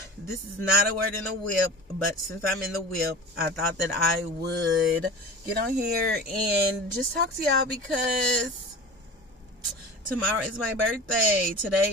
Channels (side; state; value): both; normal; correlation 0.35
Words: This is not a word in the whip, but since I'm in the whip, I thought that I would get on here and just talk to y'all because tomorrow is my birthday.